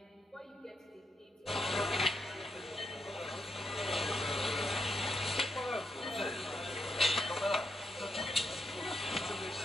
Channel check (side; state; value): both; normal; correlation 0.80